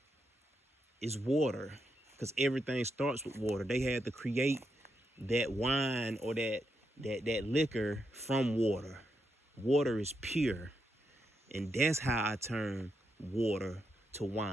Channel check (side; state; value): both; normal; correlation 0.82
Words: is water, because everything starts with water. They had to create that wine or that liquor from water. Water is pure, and that's how I turn water to